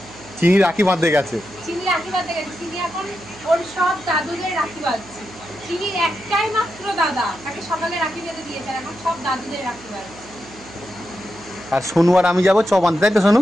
চিনি রাখি বাঁধতে গেছে। চিনি রাখি বাঁধতে গেছে চিনি এখন ওর সব দাদুদের রাখি বাঁধছে চিনির একটাই মাত্র দাদা তাকে সকালে রাখি বেঁধে দিয়েছে এখন সব দাদুদের রাখি বাঁধছে আর সোনু আর আমি যাবো চপ আনতে, তাই তো সোনু?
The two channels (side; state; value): right; noise; hum, 20 dB below the sound